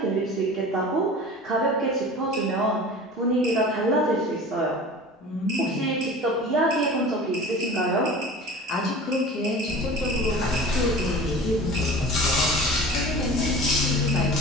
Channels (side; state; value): both; normal; correlation 0.38